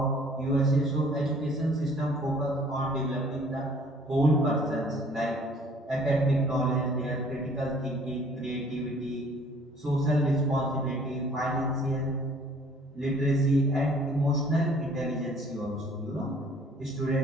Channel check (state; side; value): normal; both; correlation 0.55